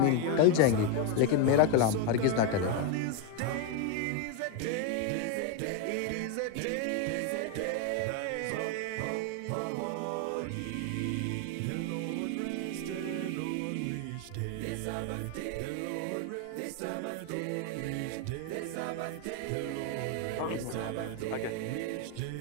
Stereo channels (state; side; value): different; both; correlation 0.01